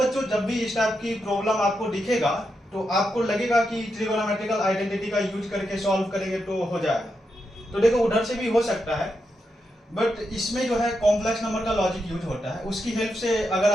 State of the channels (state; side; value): normal; both; correlation 0.85